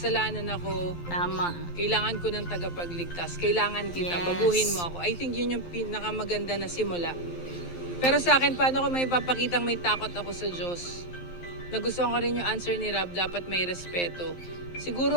ako. Tama. Kailangan ko ng tagapagligtas. Kailangan kita. Yes. Baguhin mo ako. I think yun yung pinakamaganda na simula. Pero sa akin, paano ko may papakitang may takot ako sa Diyos? Nagustuhan ko rin yung answer ni Rob, dapat may respeto.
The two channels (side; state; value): right; late; 12 ms